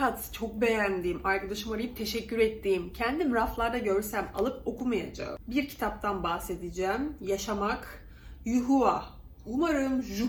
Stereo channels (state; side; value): identical; both; correlation 1.00